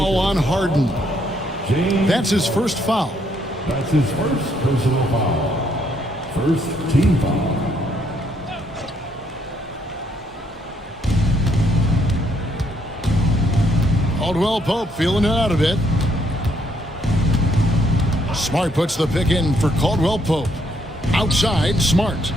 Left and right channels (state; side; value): normal; both; correlation 0.72